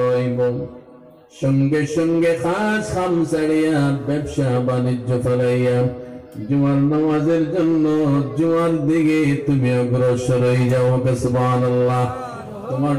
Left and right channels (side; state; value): both; identical; correlation 1.00